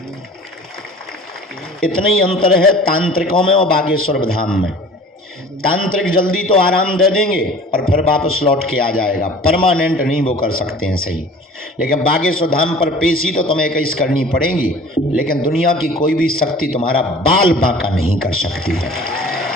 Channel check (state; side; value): normal; both; correlation 0.45